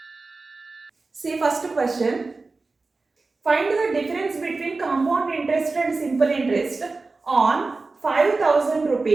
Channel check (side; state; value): left; quieter; 3.7 dB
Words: See, first question. Find the difference between compound interest and simple interest on 5,000